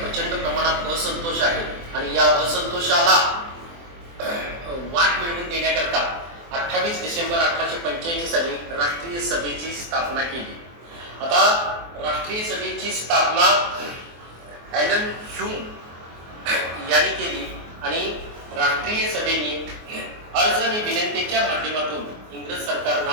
प्रमाणात असंतोष आहे आणि या असंतोषाला वाट मिळवून देण्याकरता 28 डिसेंबर 1885 साली राष्ट्रीय सभेची स्थापना केली. आता राष्ट्रीय सभेची स्थापना ॲलन ह्यूम यांनी केली आणि राष्ट्रीय सभेने अर्ज आणि विनंतीच्या माध्यमातून इंग्रज सरकारला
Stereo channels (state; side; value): late; left; 24 ms